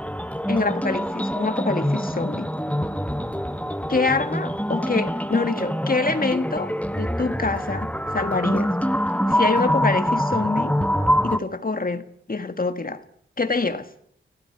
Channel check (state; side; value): normal; both; correlation 0.69